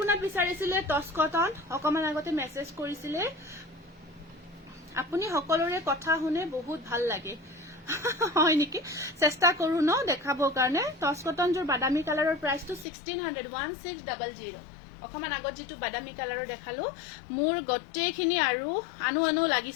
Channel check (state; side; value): drops out; right; at 12.9 s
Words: বিচাৰিছিলে টচ কটন অকমান আগতে মেসেজ কৰিছিলে আপুনি সকলোৰে কথা শুনে বহুত ভাল লাগে হয় নেকি চেষ্টা কৰো ন দেখাবৰ কাৰণে টচ কটন জোৰ বাদামী কালাৰৰ প্ৰাইসটো 1600 অকমান আগত যেটো বাদামী কালাৰৰ দেখালো মোৰ গটেখিনি আৰু আনু